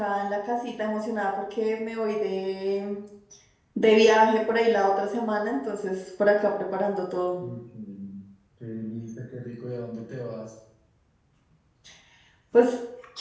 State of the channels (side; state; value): both; identical; correlation 1.00